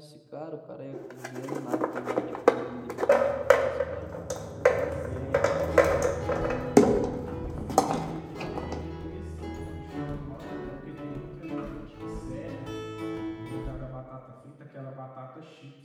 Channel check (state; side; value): identical; both; correlation 1.00